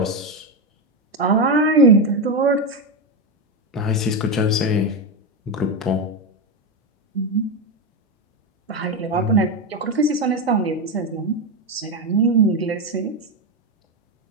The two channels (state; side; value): normal; both; correlation 0.10